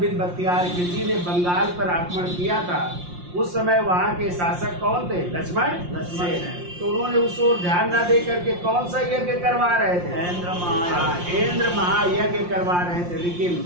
बिन बख्तियार खिलजी ने बंगाल पर आक्रमण किया था, उस समय वहां के शासक कौन थे? लक्ष्मण सेन। तो उन्होंने उस ओर ध्यान न दे करके कौन सा यज्ञ करवा रहे थे? इंद्र महायज्ञ करवा रहे थे। लेकिन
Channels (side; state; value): left; late; 5.7 ms